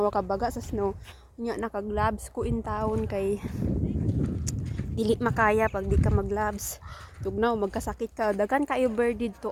ka baga sa snow. Nya naka-gloves ko in town kay dili makaya pag di ka mag-gloves. Tugnaw magkasakit ka. Dagan kayo bird dito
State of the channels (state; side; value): identical; both; correlation 1.00